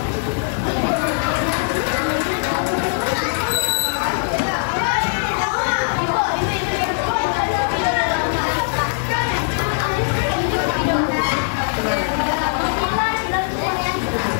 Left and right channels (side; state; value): right; silent; 66 dB below the other